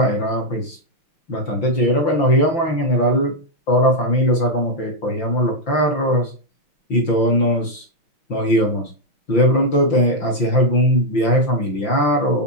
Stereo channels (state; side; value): late; right; 5.9 ms